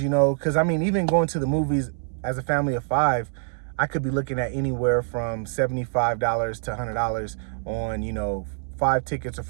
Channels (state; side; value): silent; left; 62 dB below the other